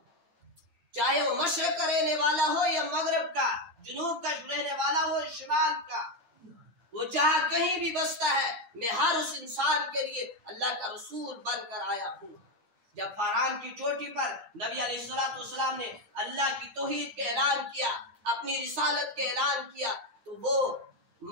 چاہے وہ مشرق کا رہنے والا ہو یا مغرب کا، جنوب کا رہنے والا ہو یا شمال کا، وہ جہاں کہیں بھی بستا ہے، میں ہر اس انسان کے لیے اللہ کا رسول بن کر آیا ہوں۔ جب فاران کی چوٹی پر نبی علیہ السلام نے اللہ کی توحید کے اعلان کیا، اپنی رسالت کے اعلان کیا، تو وہ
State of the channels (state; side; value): late; left; 8.7 ms